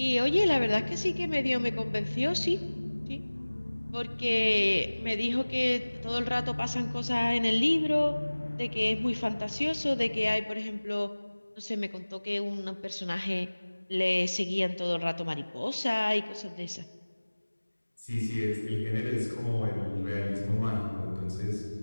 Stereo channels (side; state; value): both; inverted; correlation -1.00